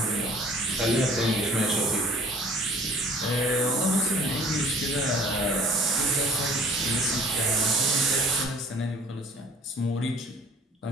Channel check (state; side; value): normal; both; correlation 0.51